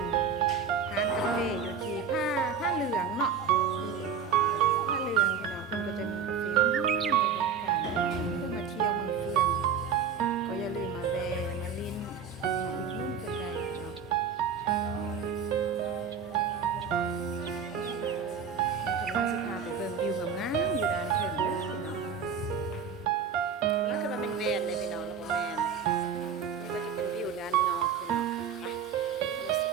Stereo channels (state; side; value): quieter; left; 6.6 dB